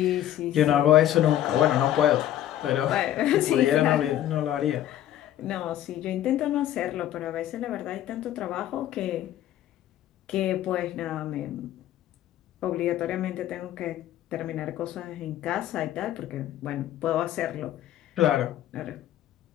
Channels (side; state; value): right; quieter; 12.2 dB